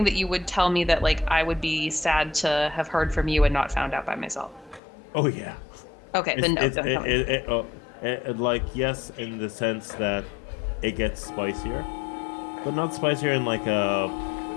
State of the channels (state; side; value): drops out; right; at 4.8 s